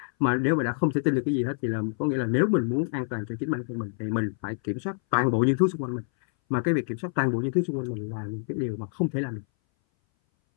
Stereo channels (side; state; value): right; silent; 59 dB below the other